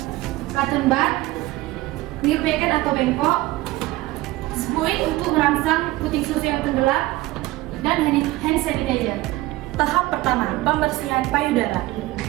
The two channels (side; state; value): left; quieter; 18.4 dB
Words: cotton bud, clear packet atau bengkok, spuit untuk merangsang puting susu yang tenggelam, dan hand sanitizer. Tahap pertama, pembersihan payudara.